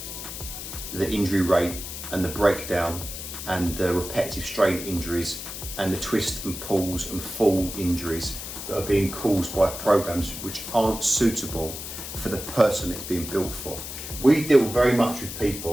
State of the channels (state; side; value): noise; left; hiss, 8 dB below the sound